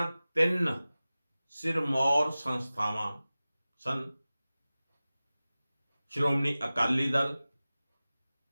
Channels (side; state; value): both; inverted; correlation -0.97